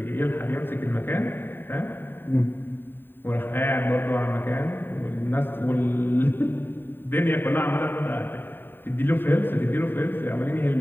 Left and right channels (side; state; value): right; late; 0.096 ms